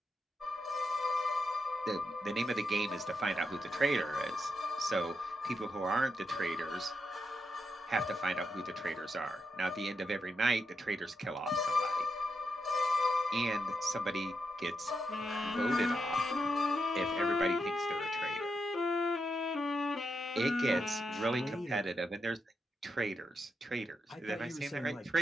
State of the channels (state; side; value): normal; both; correlation 0.84